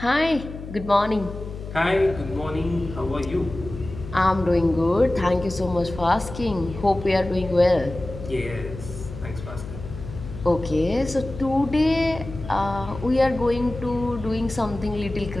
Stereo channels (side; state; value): left; noise; hum, 11 dB below the sound